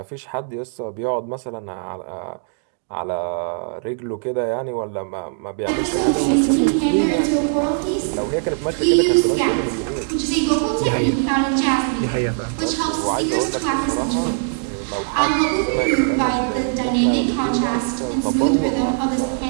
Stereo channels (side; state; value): left; silent; digital silence